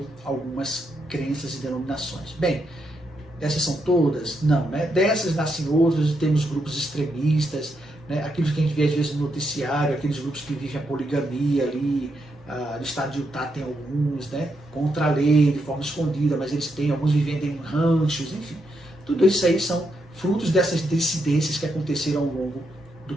algumas crenças e denominações. Bem, essas são todas? Não, né? Dessas nascem outras e temos grupos extremistas, né? Aqueles que a gente vê às vezes no noticiário, aqueles grupos que vivem a poligamia ali, no estado de Utah tem alguns, né? Contra a lei, de forma escondida, mas eles têm, alguns vivendo em ranchos, enfim. Tudo isso aí são frutos dessas dissidências que aconteceram ao longo do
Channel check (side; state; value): both; normal; correlation 0.80